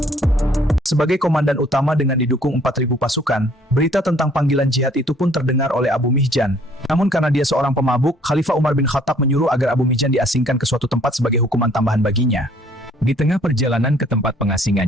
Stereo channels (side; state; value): both; normal; correlation 0.60